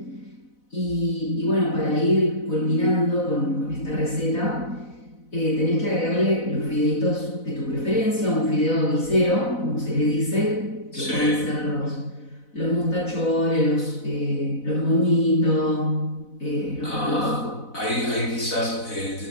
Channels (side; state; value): right; late; 4.0 ms